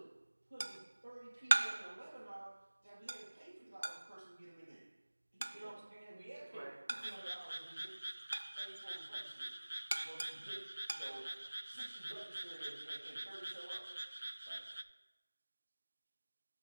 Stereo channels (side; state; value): both; inverted; correlation -1.00